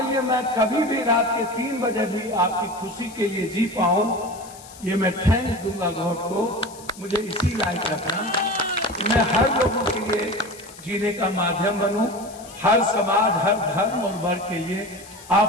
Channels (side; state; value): left; noise; hiss, 19 dB below the sound